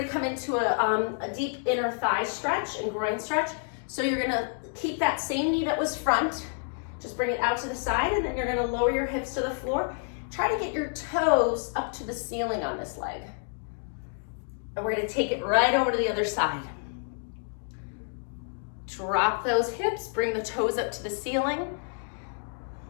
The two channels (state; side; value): silent; right; 59 dB below the other